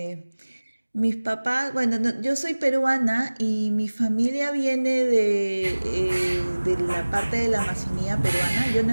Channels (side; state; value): both; inverted; correlation -1.00